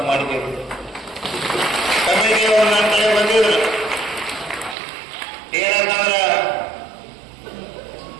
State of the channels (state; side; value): drops out; left; at 4.8 s